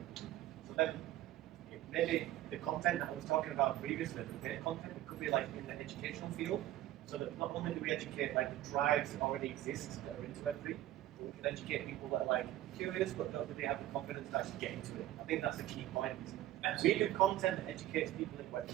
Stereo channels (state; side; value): quieter; left; 14.2 dB